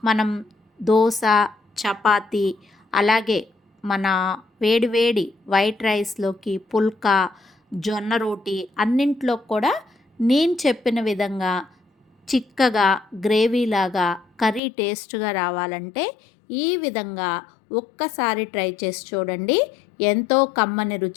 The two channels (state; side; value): drops out; right; at 14.6 s